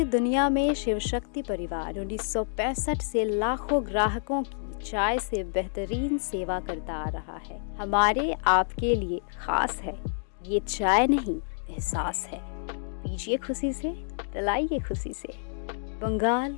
दुनिया में शिव शक्ति परिवार 1965 से लाखों ग्राहकों की चाय से बेहतरीन सेवा करता आ रहा है। हमारे आपके लिए खास है, ये चाय नहीं एहसास है। पीजिए खुशी से, पिलाइए खुशी से। बंगाल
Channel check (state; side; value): silent; right; digital silence